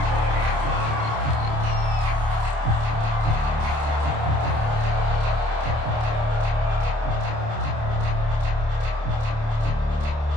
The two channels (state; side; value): late; left; 27 ms